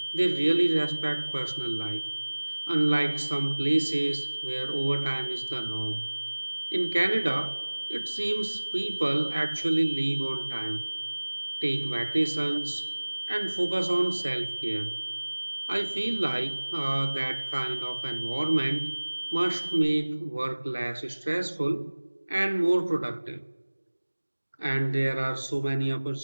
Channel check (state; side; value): inverted; both; correlation -1.00